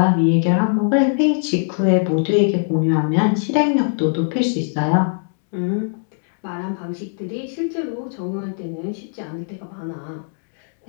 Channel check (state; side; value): silent; right; digital silence